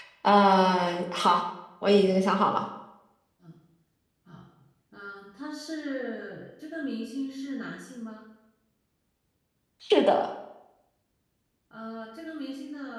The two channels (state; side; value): identical; both; correlation 1.00